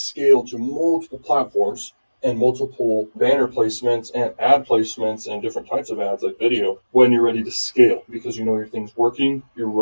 to multiple platforms and multiple banner placements and ad placements and different types of ads like video when you're ready to scale because you know your thing's working, you're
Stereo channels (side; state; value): both; inverted; correlation -1.00